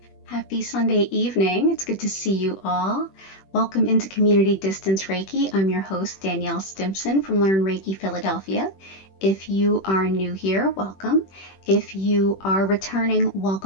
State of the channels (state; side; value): late; right; 21 ms